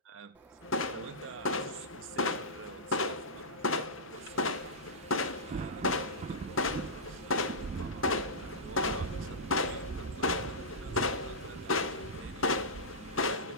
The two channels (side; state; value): both; normal; correlation -0.16